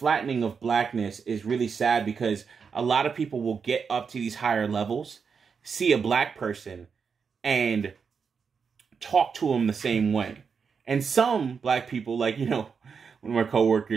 of blackness is really sad because a lot of people will get up to these higher levels, see a black person, and talk to them the same way. And some black people, like, one of my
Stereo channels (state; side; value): quieter; left; 5.9 dB